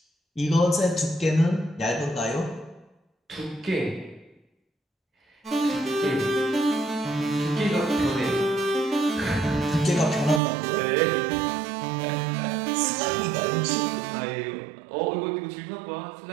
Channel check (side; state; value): left; drops out; at 10.4 s